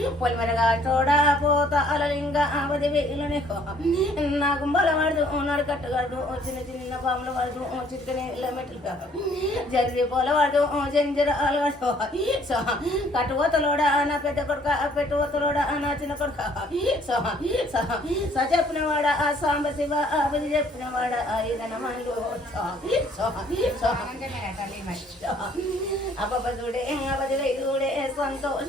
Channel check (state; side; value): normal; both; correlation 0.61